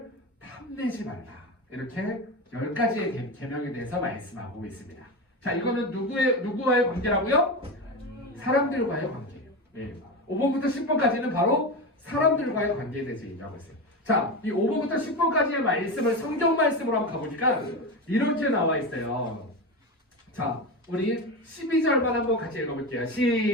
탐내지 말라. 이렇게 10가지의 계명에 대해서 말씀하고 있습니다. 자, 이거는 누구와의 관계라고요? 사람들과의 관계예요. 네. 5번부터 10번까지는 바로 사람들과의 관계에 대해서 얘기하고 있어요. 자, 이 5번부터 10번까지의 말씀을 성경 말씀으로 한번 가보니까 이렇게 나와 있어요. 자, 우리 12절만 한번 같이 읽어볼게요.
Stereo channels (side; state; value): both; normal; correlation 0.20